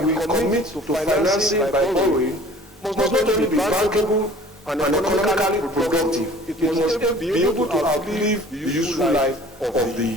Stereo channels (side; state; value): both; normal; correlation 0.48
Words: we commit to financing by borrowing must not only be bankable and economically productive, it must be able to outlive the useful life of